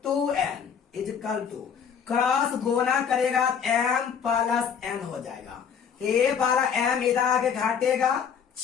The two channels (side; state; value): right; quieter; 7.2 dB